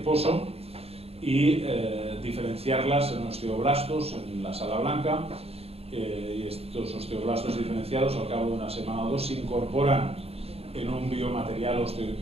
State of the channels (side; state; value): left; late; 0.29 ms